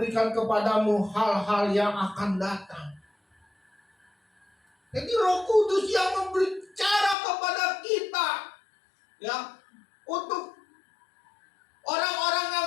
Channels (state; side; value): drops out; right; at 7.2 s